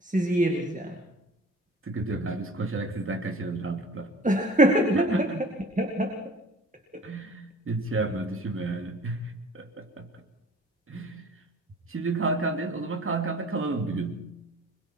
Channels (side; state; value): both; normal; correlation 0.46